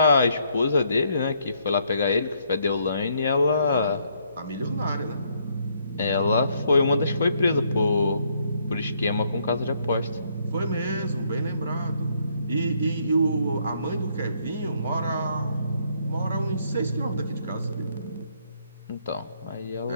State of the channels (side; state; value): both; inverted; correlation -0.71